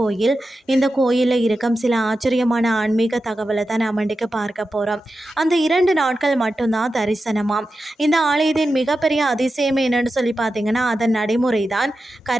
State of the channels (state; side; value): normal; both; correlation 0.91